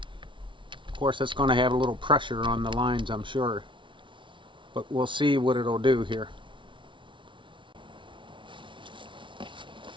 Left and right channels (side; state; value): left; late; 0.24 ms